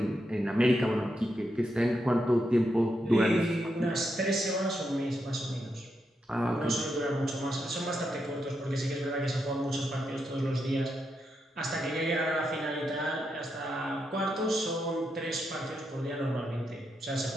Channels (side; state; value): both; normal; correlation 0.83